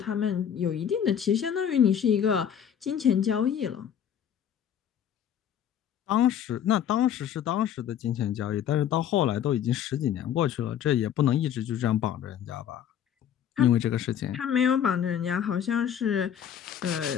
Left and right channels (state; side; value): quieter; right; 9.3 dB